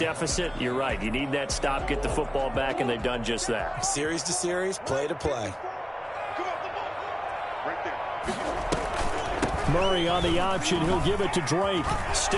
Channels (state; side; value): identical; both; correlation 1.00